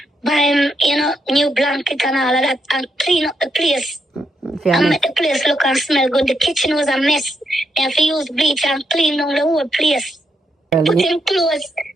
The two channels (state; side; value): normal; both; correlation 0.80